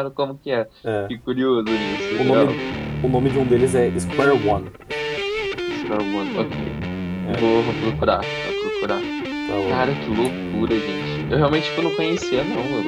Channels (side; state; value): both; identical; correlation 1.00